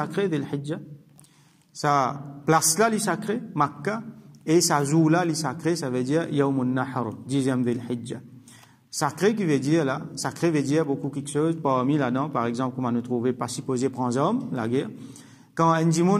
de l'Hijja, sa place là, les sacrés, Makkah, et sa jour là, les sacrés, ça veut dire Yawmun Nahr, 10e de l'Hijja. Sacré qui veut dire là, sacré veut dire beaucoup quelque chose, parmi là-dedans, par exemple, comment nous trouver, pas supposé prendre hommes, la guerre. Quand un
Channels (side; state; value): both; identical; correlation 1.00